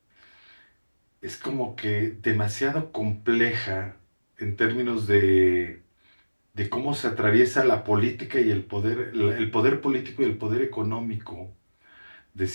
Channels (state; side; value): inverted; both; correlation -1.00